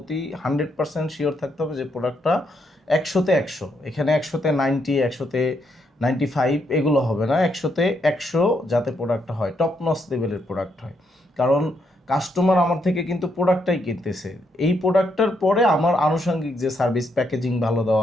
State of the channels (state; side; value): normal; both; correlation 0.77